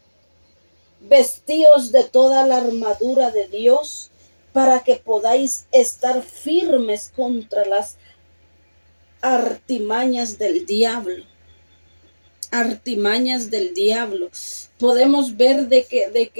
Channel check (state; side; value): inverted; both; correlation -1.00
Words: Vestíos de toda la armadura de Dios para que podáis estar firmes contra las artimañas del diablo. Artimañas del diablo. Podemos ver de